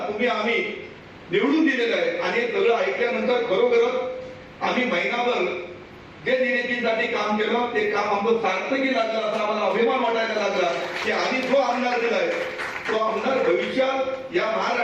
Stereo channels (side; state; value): both; identical; correlation 1.00